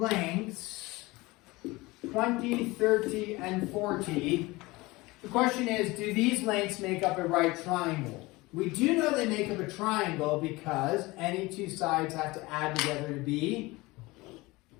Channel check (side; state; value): right; quieter; 21.9 dB